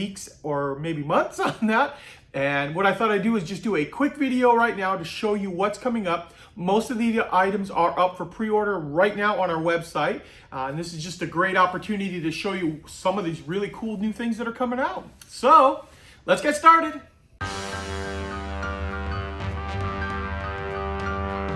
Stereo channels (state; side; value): identical; both; correlation 1.00